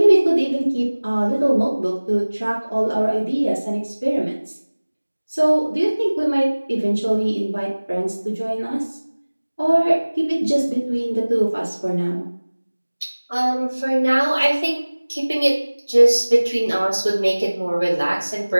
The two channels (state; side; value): inverted; both; correlation -1.00